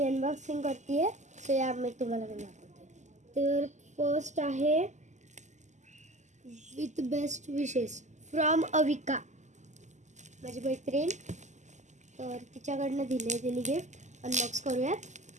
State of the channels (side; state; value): left; late; 0.34 ms